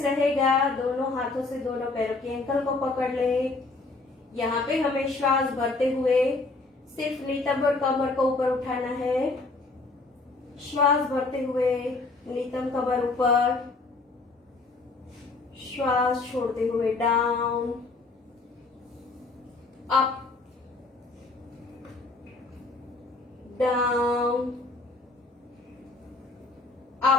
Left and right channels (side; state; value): right; quieter; 3.5 dB